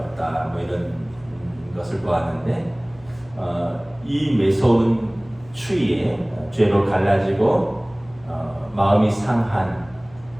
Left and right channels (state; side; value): noise; left; hum, 24 dB below the sound